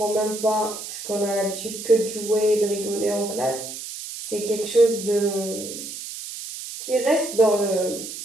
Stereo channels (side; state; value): right; noise; hiss, 9 dB below the sound